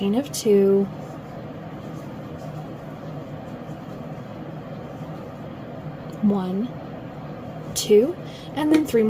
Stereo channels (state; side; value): identical; both; correlation 1.00